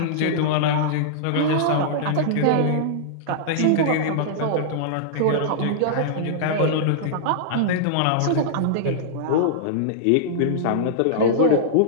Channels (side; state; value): both; different; correlation -0.02